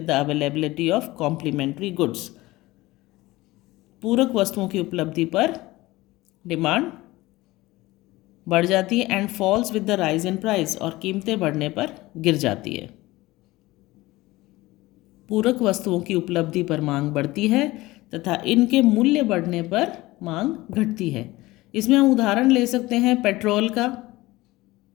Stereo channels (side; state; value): right; quieter; 19.3 dB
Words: the availability of complementary goods. पूरक वस्तुओं की उपलब्धि पर डिमांड बढ़ जाती है। And falls with the rise in price, और कीमतें बढ़ने पर गिर जाती है। पूरक वस्तुओं की उपलब्धि पर मांग बढ़ती है तथा इनके मूल्य बढ़ने पर मांग घटती है। इसमें हम उदाहरण ले सकते हैं पेट्रोल का।